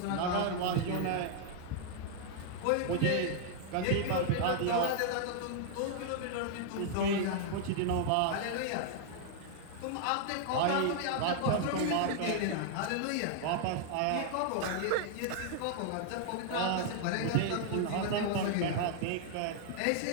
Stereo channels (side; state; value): both; different; correlation 0.00